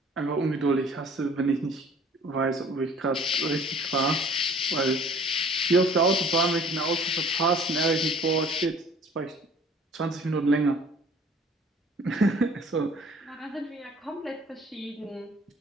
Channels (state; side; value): normal; both; correlation 0.51